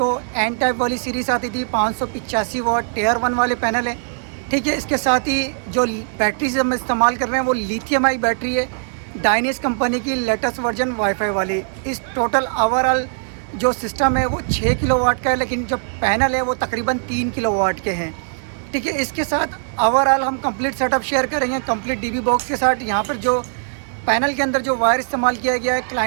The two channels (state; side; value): silent; left; digital silence